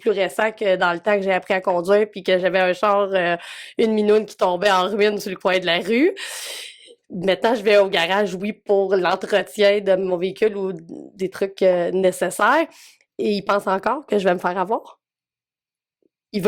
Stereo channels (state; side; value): identical; both; correlation 1.00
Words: récent que dans le temps que j'ai appris à conduire, puis que j'avais un char, une minoune qui tombait en ruine sur le coin de la rue. Maintenant, je vais au garage, oui, pour l'entretien de mon véhicule ou des trucs nécessaires. Et il pense encore que je vais me faire avoir. Il